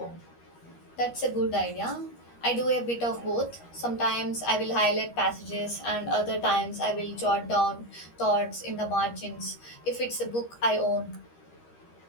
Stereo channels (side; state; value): right; late; 13 ms